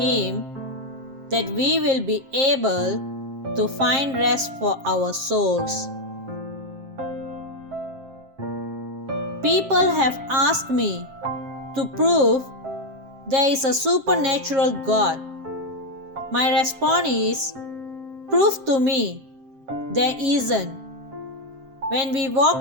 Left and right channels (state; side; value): late; left; 7.5 ms